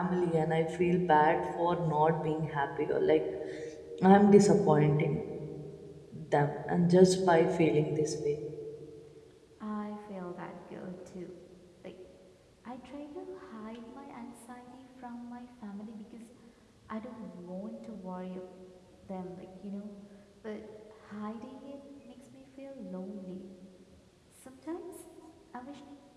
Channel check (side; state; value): both; identical; correlation 1.00